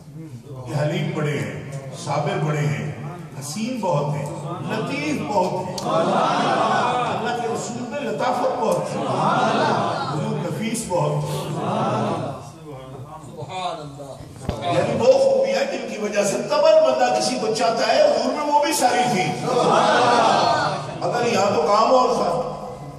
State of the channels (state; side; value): identical; both; correlation 1.00